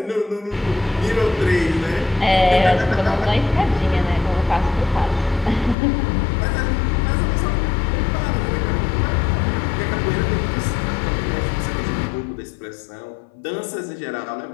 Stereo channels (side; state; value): right; drops out; at 5.8 s